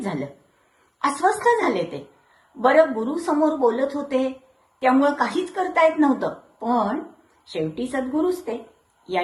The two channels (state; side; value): identical; both; correlation 1.00